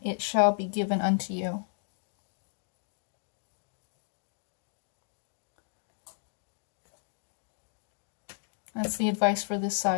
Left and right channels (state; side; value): silent; right; digital silence